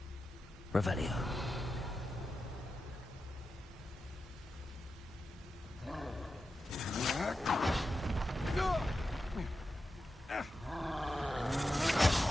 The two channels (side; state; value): both; normal; correlation 0.90